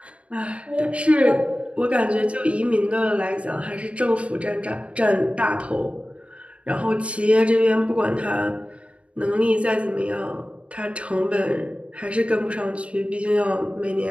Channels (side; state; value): left; late; 0.062 ms